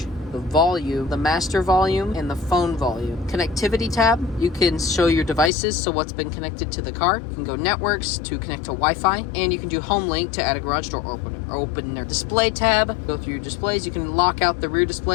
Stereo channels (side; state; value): right; drops out; at 5.5 s